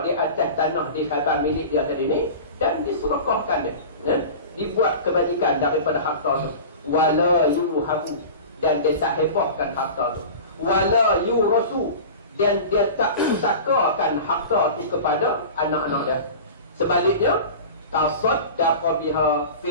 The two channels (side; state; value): both; inverted; correlation -0.34